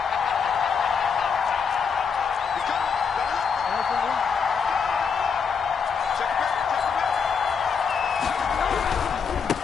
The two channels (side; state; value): right; quieter; 6.2 dB